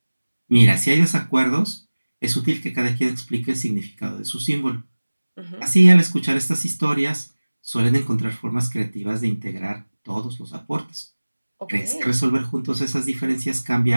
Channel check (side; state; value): both; inverted; correlation -1.00